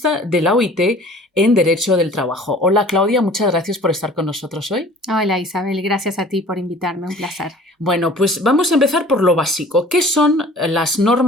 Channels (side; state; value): both; normal; correlation 0.47